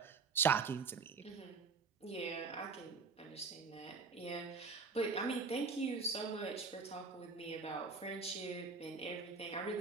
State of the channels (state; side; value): quieter; left; 4.7 dB